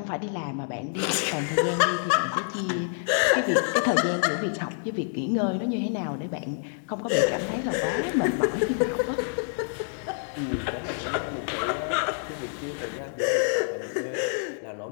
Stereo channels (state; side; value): silent; right; digital silence